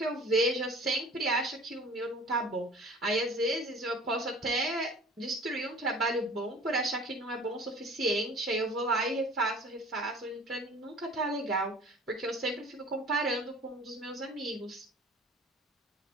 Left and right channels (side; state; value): both; normal; correlation 0.45